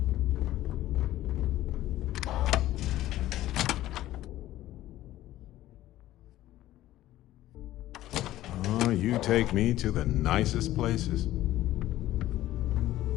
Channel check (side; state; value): right; quieter; 14.7 dB